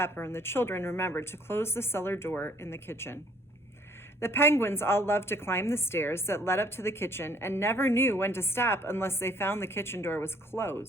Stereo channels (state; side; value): normal; both; correlation 0.61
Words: and the children remembered to close the cellar door in the kitchen. The penguins all loved to climb the stairs that led up to the kitchen and never knew when to stop unless they found the kitchen door was